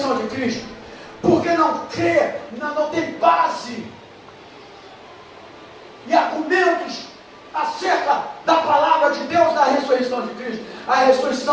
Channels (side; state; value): both; identical; correlation 1.00